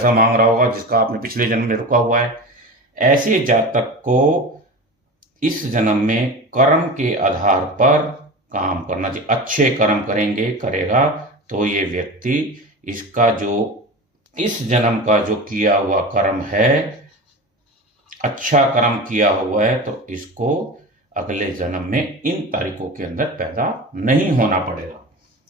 मांग रहा होगा जिसका आपने पिछले जन्म में रुका हुआ है। ऐसे जातक को इस जन्म में कर्म के आधार पर काम करना चाहिए। अच्छे कर्म करेगा तो ये व्यक्ति इसका जो इस जन्म का जो किया हुआ कर्म है, अच्छा कर्म किया हुआ है, तो इसको अगले जन्म में इन तारीखों के अंदर पैदा नहीं होना पड़ेगा।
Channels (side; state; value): both; normal; correlation 0.30